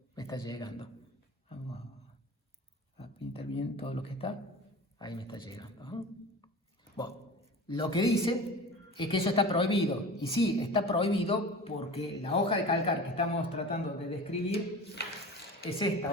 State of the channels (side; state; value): both; normal; correlation 0.36